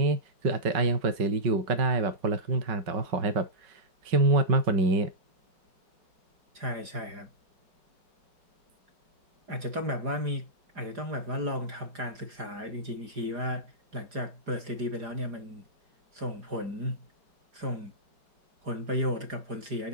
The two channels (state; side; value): late; left; 4.9 ms